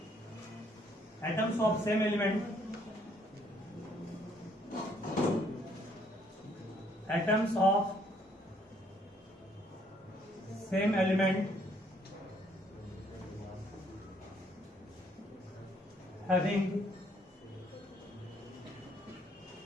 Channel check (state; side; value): normal; both; correlation 0.66